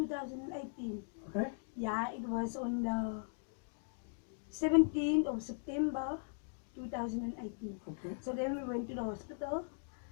Okay, Yeah, it was on the 17th of September 2018. okay, So then we went to the hospital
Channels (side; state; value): right; silent; digital silence